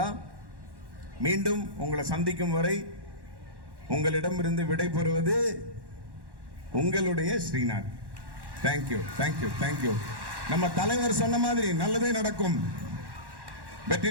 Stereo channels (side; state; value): left; late; 1.1 ms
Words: மீண்டும் உங்களை சந்திக்கும் வரை உங்களிடமிருந்து விடைபெறுவது உங்களுடைய ஸ்ரீநாத். Thank you, thank you, thank you. நம்ம தலைவர் சொன்ன மாதிரி நல்லதே நடக்கும்,